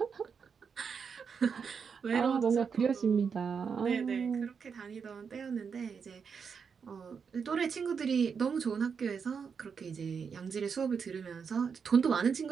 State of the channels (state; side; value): quieter; left; 6.2 dB